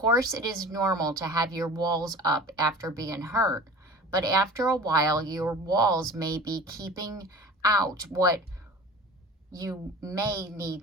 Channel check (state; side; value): normal; both; correlation 0.39